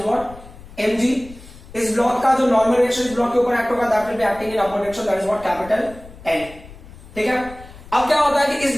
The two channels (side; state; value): left; noise; rumble, 18 dB below the sound